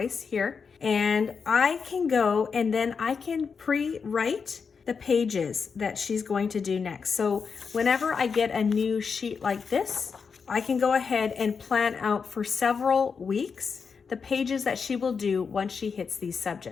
here, and I can go and then I can pre-write the pages that she's going to do next. So whenever I get a new sheet like this, I can go ahead and plan out for several weeks the pages that she will do once she hits these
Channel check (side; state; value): right; quieter; 5.7 dB